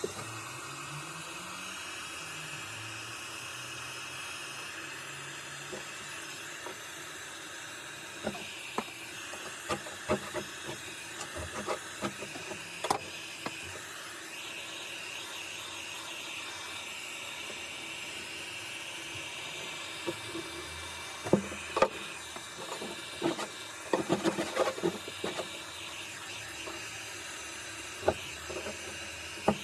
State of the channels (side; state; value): both; identical; correlation 1.00